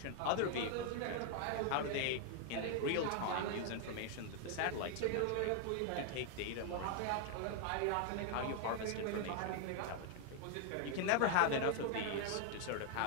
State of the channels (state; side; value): different; both; correlation 0.00